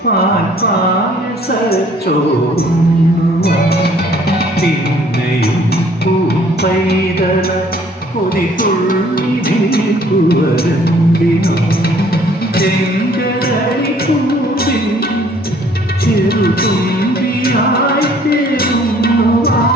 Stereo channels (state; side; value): normal; both; correlation 0.58